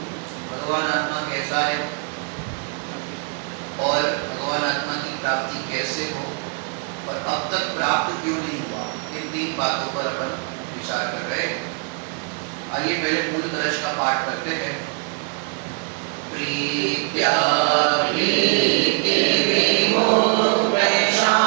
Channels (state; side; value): quieter; left; 37.2 dB